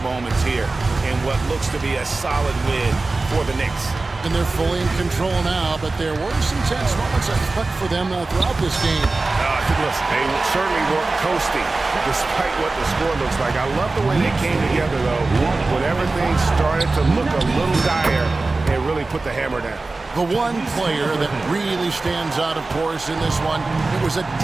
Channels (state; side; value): quieter; left; 3.4 dB